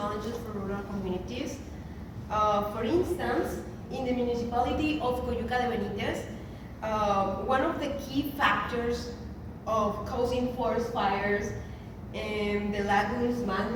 for rural communities. For instance, in the municipality of Coyuca de Benítez, one of the key factors of causing forest fires in the lagoons,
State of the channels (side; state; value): both; identical; correlation 1.00